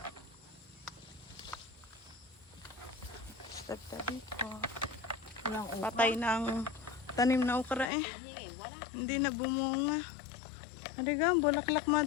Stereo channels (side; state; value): right; drops out; at 7.9 s